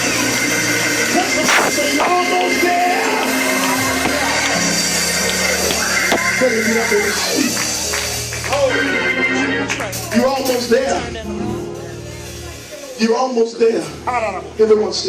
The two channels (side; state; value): both; identical; correlation 1.00